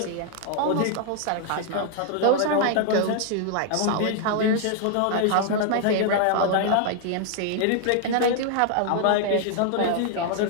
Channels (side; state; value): both; different; correlation -0.01